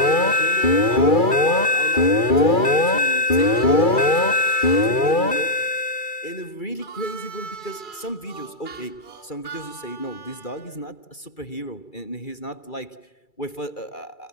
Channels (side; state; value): right; late; 2.3 ms